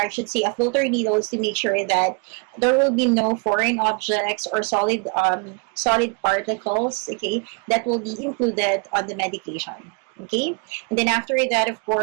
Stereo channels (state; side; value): quieter; left; 35.8 dB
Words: should say a filter needle, is to make sure that there will be no foreign objects or solid particles, okay, that will be included on the medication. Okay, and then after that, of